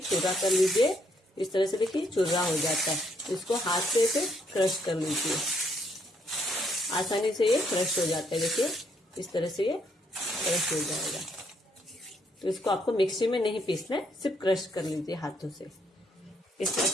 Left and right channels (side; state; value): both; normal; correlation 0.72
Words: चुर्रा कर लीजिए। इस तरह से देखिए चुर्रा हो जाता है। इसको हाथ से ऐसे क्रश कर लीजिए, आसानी से ये क्रश हो जाता है। देखिए इस तरह से ये क्रश हो जाएगा। तो इसको आपको मिक्सी में नहीं पीसना है, सिर्फ क्रश कर लीजिए हाथों से। इस तरह